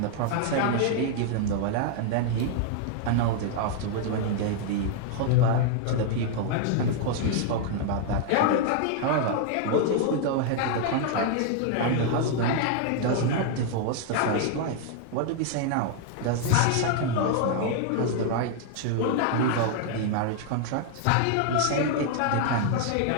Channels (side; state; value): both; different; correlation 0.00